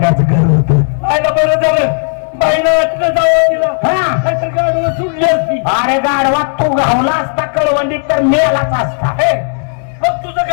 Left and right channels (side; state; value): right; silent; digital silence